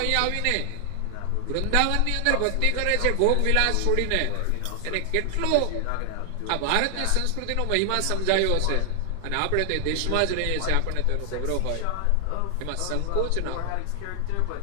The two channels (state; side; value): different; both; correlation 0.00